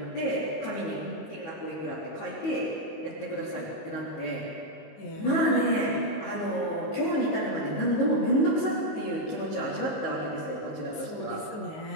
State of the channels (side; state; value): right; late; 19 ms